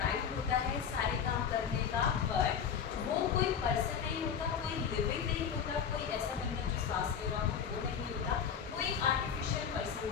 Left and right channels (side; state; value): right; quieter; 7.5 dB